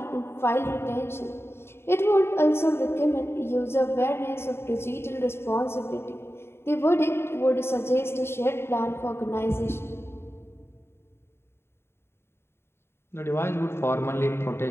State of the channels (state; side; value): late; right; 0.12 ms